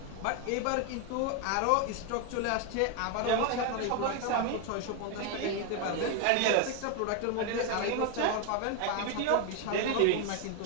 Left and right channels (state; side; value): different; both; correlation 0.01